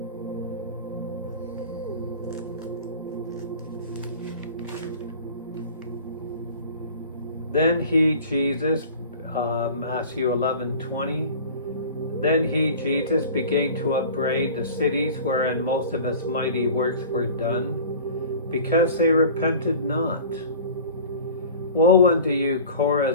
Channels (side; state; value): both; inverted; correlation -0.40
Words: Then he, Jesus, Matthew 11:20. Then he, Jesus, began to upbraid the cities wherein most of his mighty works were done, because they repented not. Woe unto you,